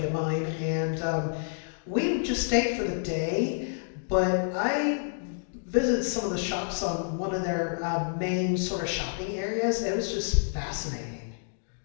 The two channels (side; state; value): right; silent; digital silence